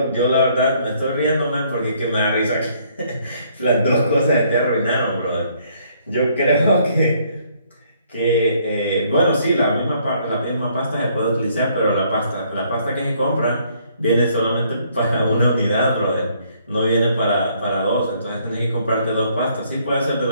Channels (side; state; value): both; inverted; correlation -0.66